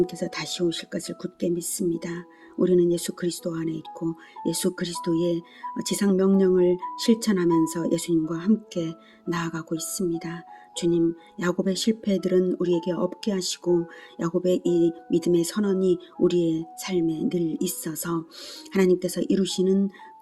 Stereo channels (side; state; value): both; identical; correlation 1.00